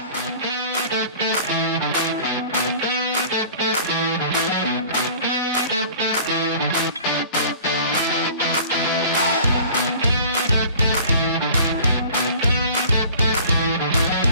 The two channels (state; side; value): inverted; both; correlation -0.45